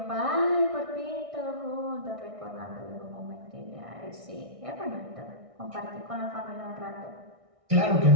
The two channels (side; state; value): left; late; 1.6 ms